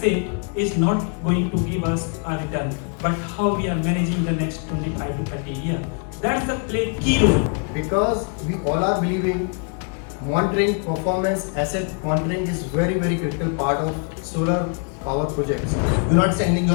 is not going to give us a return, but how we are managing the next 25 to 30 years. That's the play key role. Because we all are believing monitoring performance, asset monitoring is very critical part of solar power projects. You're not sending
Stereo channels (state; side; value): quieter; right; 38.5 dB